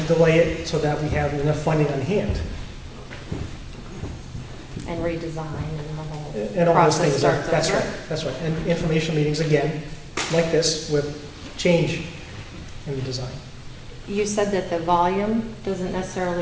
delay it so that we have enough funding on hand. And redesign and the whole And all those process things, starts that's over? right, that's right. And information meetings, again, like this, with change in the design. You said that the volume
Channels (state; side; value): identical; both; correlation 1.00